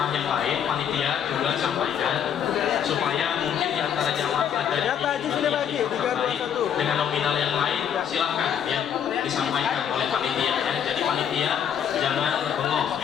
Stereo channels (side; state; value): right; quieter; 8.6 dB